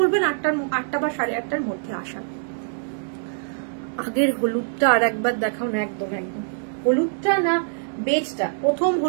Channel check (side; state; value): left; silent; digital silence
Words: 8টা বা 8:30টার মধ্যে আসার। আগের হলুদটা আর একবার দেখাও না। একদম হলুদটা না বেজটা? প্রথম